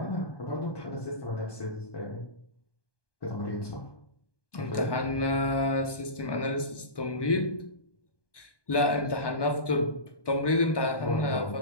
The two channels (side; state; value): right; late; 1.2 ms